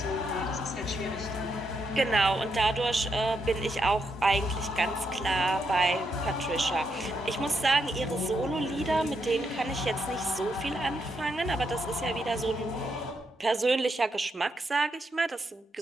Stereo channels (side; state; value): both; normal; correlation 0.80